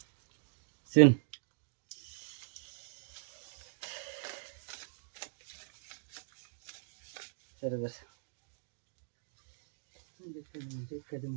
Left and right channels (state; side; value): silent; left; digital silence